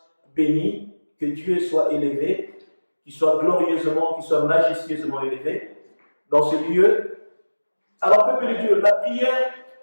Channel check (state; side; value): inverted; both; correlation -1.00